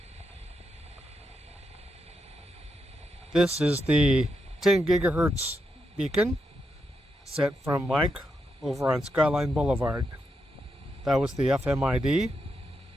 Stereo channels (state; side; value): normal; both; correlation 0.83